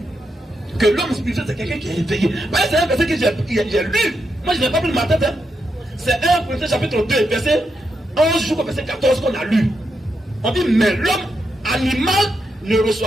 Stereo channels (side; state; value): both; normal; correlation 0.83